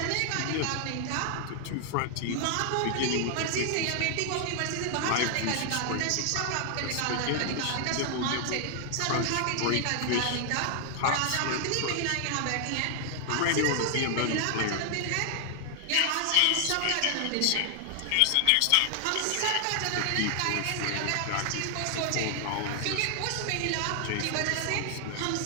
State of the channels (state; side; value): different; both; correlation 0.00